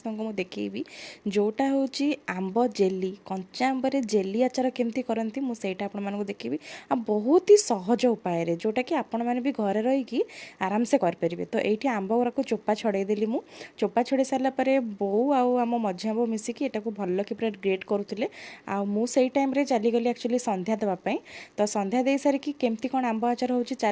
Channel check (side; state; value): both; identical; correlation 1.00